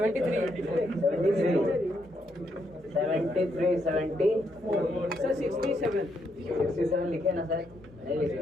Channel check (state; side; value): normal; both; correlation 0.77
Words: 73, 70. सर 67 लिखे ना सर? नहीं लिखे